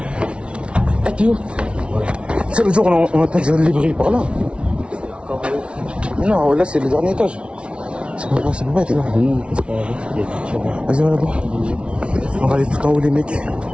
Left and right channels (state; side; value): late; left; 0.059 ms